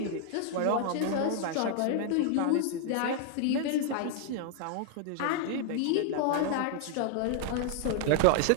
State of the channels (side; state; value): both; different; correlation 0.00